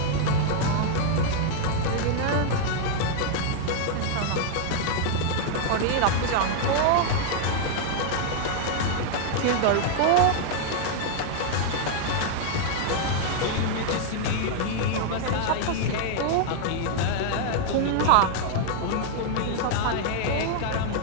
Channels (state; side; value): different; both; correlation 0.00